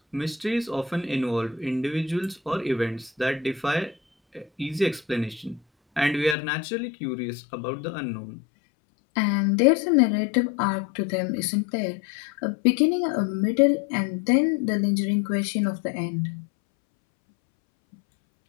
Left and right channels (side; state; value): right; drops out; at 6.4 s